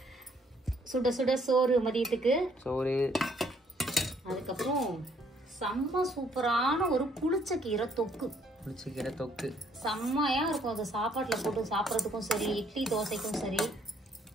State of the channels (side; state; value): both; normal; correlation 0.66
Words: சுட சுட சோறு மதியத்துக்கு. சோறு. அதுக்கப்புறம் செம்ம சூப்பரான ஒரு புளிச்சக்கீரை தொக்கு. புளிச்சக்கீரை தொக்கு செம்மையா இருக்கும். அது சாப்பாட்டுல போட்டு சாப்பிட்றதுக்கும் சரி, இட்லி தோசைக்கும் சரி,